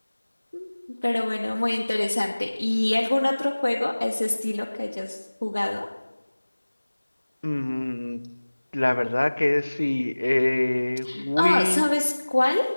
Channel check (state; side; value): inverted; both; correlation -1.00